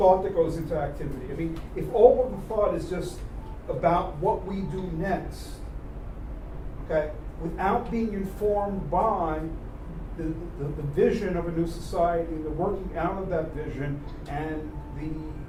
that goes into activity. I mean, if all of the thought is just about what we do next, okay, without being informed by the vision of a new society, the working out of that vision, and the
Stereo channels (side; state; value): both; identical; correlation 1.00